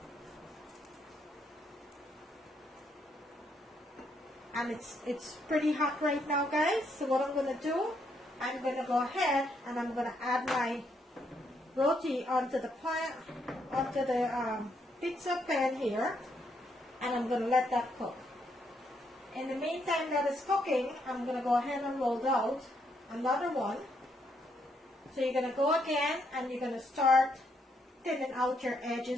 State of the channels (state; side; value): normal; both; correlation 0.75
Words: and it's pretty hot right now, guys. So what I'm going to do, I'm going to go ahead and I'm going to add my roti onto the pizza pan here, and I'm going to let that cook. In the meantime that is cooking, I'm going to go ahead and roll out another one. So you're going to go again and you're going to start thinning out your